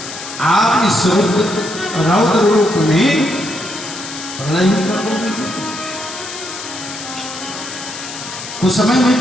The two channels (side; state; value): left; noise; hiss, 10 dB below the sound